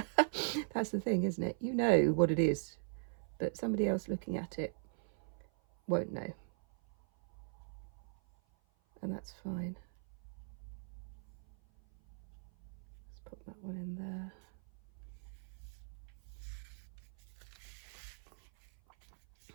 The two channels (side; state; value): left; silent; 51 dB below the other